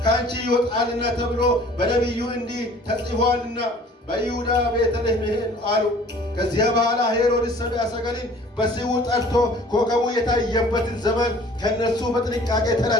ከአንቺ ይወጣልና ተብሎ በነቢዩ እንዲህ ተጽፏልና በይሁዳ ቤተልሔም አሉ። ከዚያ በኋላ ሄሮድስ ሰብአ ሰገልን በስውር ጠርቶ ኮከቡ የታየበትን ዘመን ከእነርሱ በጥንቃቄ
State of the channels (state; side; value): normal; both; correlation 0.51